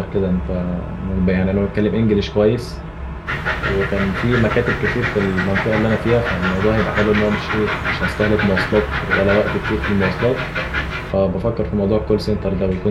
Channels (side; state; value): both; identical; correlation 1.00